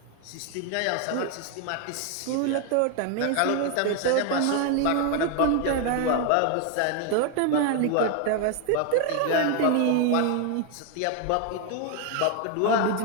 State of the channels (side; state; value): both; different; correlation 0.01